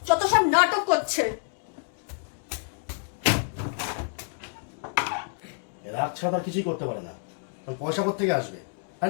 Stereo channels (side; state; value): right; silent; 60 dB below the other